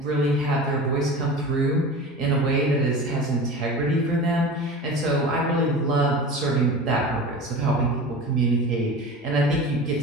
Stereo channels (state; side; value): normal; both; correlation 0.34